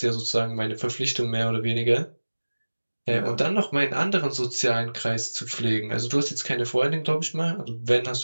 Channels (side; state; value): both; inverted; correlation -1.00